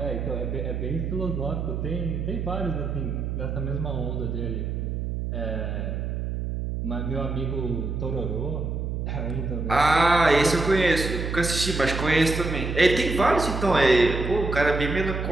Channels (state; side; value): noise; right; hum, 3 dB below the sound